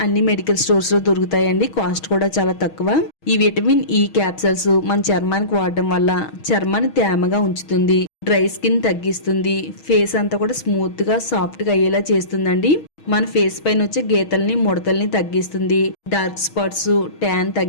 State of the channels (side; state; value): right; late; 6.3 ms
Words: అన్ని మెడికల్ స్టోర్స్ లో దొరుకుతాయండి. కాస్ట్ కూడా చాలా తక్కువ. ఈ విటమిన్ ఈ క్యాప్సిల్స్ మన చర్మానికి వాడడం వల్ల చర్మాన్ని తేమగా ఉంచుతుంది. డ్రై స్కిన్ తగ్గిస్తుంది. ఫేస్ అంతా కూడా స్మూత్ గా సాఫ్ట్ గా అయ్యేలా చేస్తుందండి. మన ఫేస్ పైన వచ్చే గీతల్ని ముడతల్ని తగ్గిస్తుంది. డార్క్ స్పాట్స్ ట్యాన్